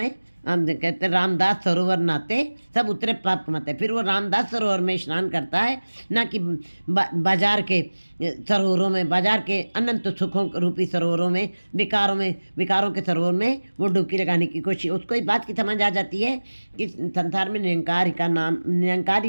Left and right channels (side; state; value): both; inverted; correlation -1.00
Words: हम कहते हैं रामदास सरोवर नाते सब उतरे पाप कमाते। फिर वो रामदास सरोवर में स्नान करता है, ना कि बाजार के सरोवरों में, बाजार के अनंत सुखों रूपी सरोवरों में, विकारों के सरोवर में वो डुबकी लगाने की कोशिश। उसको इस बात की समझ आ जाती है कि संसार में निरंकार का नाम, निरंकार